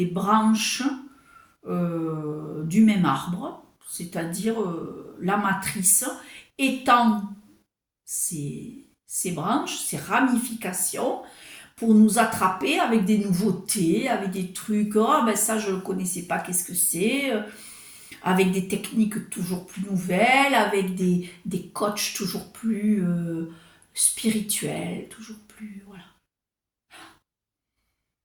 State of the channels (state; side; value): identical; both; correlation 1.00